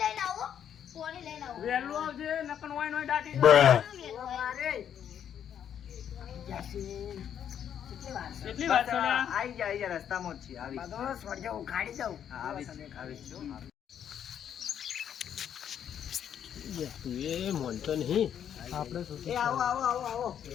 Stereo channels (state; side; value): quieter; right; 9.2 dB